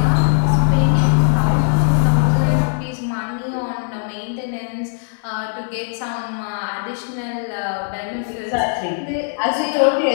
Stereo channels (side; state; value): right; silent; digital silence